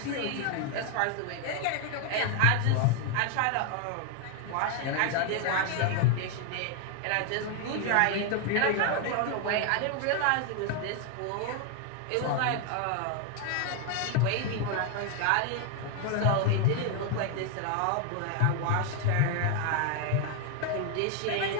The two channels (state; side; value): different; both; correlation 0.01